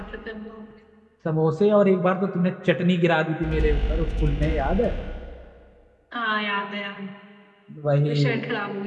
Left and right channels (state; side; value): identical; both; correlation 1.00